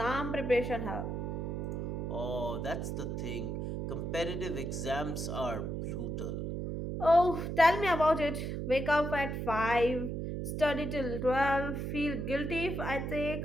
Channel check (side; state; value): right; noise; hum, 3 dB below the sound